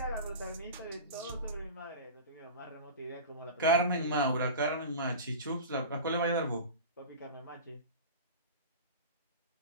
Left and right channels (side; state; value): both; inverted; correlation -0.32